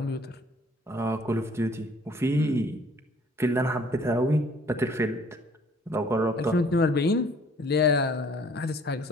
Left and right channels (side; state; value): both; normal; correlation 0.57